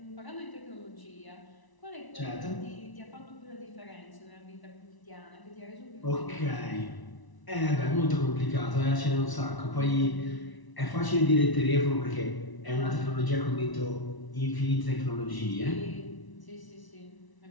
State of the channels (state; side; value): late; right; 1.0 ms